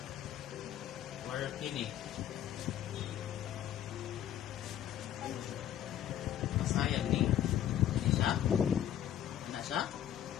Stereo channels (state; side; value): quieter; right; 11.1 dB